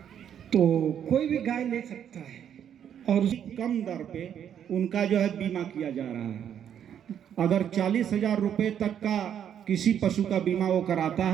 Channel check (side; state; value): left; quieter; 9.2 dB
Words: तो कोई भी गाय ले सकता है और कम दर पे उनका जो है बीमा किया जा रहा है। अगर 40,000 रुपये तक का किसी पशु का बीमा वो कराता